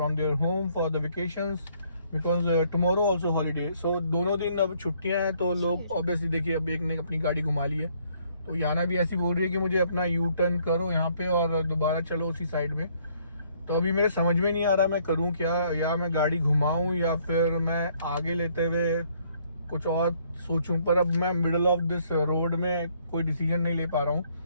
their home for the vacations. Because tomorrow also holiday. So दोनों दिन अब छुट्टियां हैं तो लोग obviously देखिए अब एक ने अपनी गाड़ी घुमा ली है तो याना भी ऐसी बोल रही है कि मुझे अपना यू टर्न करो यहाँ पे और दोबारा चलो उसी साइड में। तो अभी मेरे समझ में नहीं आ रहा मैं करूँ क्या, या मैं गाड़ी घुमाऊँ या फिर मैं आगे लेते हुए कुछ और सोचूं। पर अब मैं मिडल ऑफ दिस रोड में कोई डिसीजन नहीं ले पा रहा हूँ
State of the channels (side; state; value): both; inverted; correlation -0.66